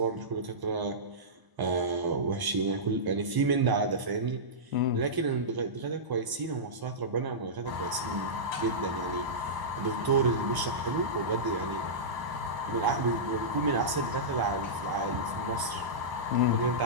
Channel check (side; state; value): left; late; 1.0 ms